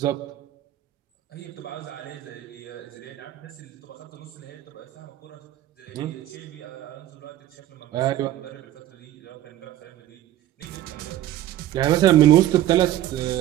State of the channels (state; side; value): quieter; left; 13.4 dB